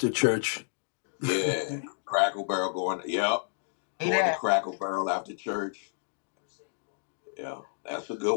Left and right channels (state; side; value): silent; right; digital silence